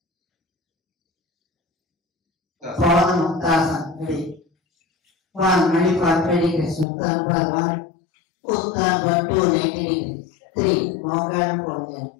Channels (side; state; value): right; drops out; at 6.9 s